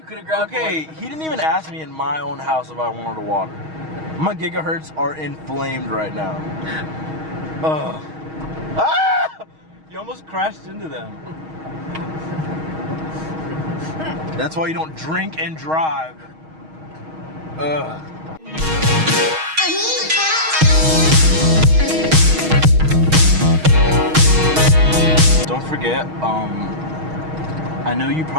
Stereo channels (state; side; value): late; left; 6.3 ms